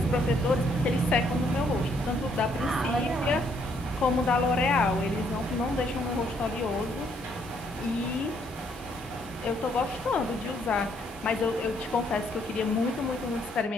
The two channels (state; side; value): normal; both; correlation 0.69